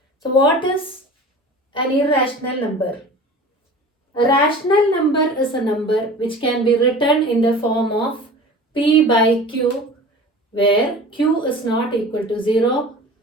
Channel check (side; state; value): both; normal; correlation 0.39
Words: So what is an irrational number? A rational number is a number which can be written in the form of p by q, where q is not equal to 0.